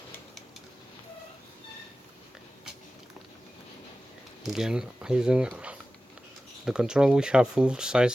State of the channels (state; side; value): normal; both; correlation 0.95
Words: Again, using the control, we have full side